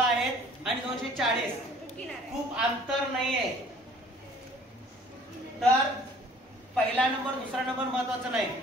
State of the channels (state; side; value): normal; both; correlation 0.54